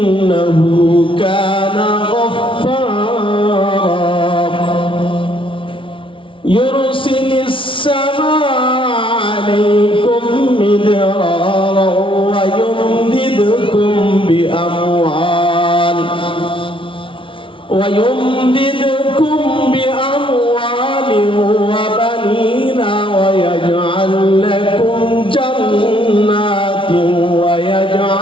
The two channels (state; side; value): late; right; 0.25 ms